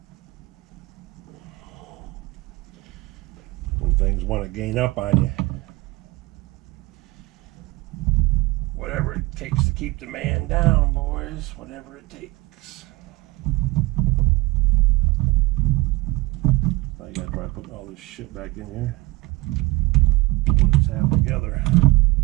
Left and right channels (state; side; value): quieter; left; 21.4 dB